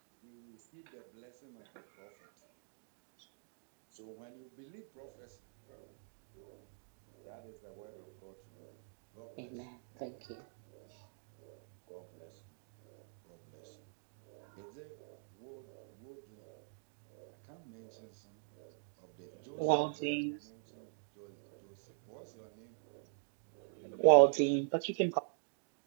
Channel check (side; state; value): left; silent; digital silence